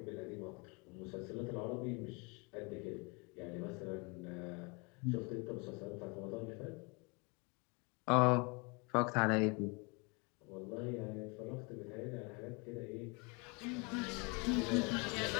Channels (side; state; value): right; quieter; 30.7 dB